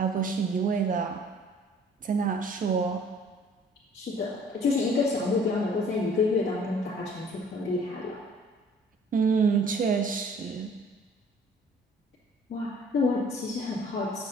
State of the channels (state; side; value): normal; both; correlation 0.54